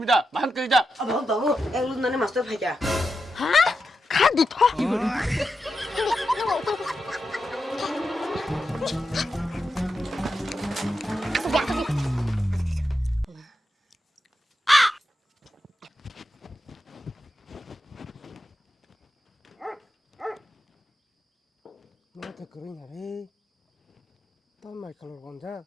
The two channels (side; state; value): both; normal; correlation 0.88